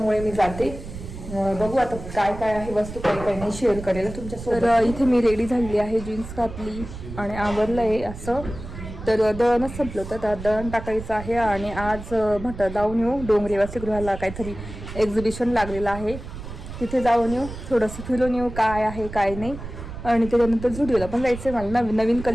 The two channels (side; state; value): right; noise; rumble, 11 dB below the sound